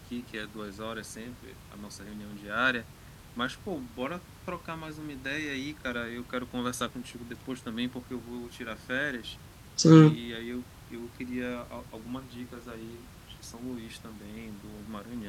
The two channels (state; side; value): identical; both; correlation 1.00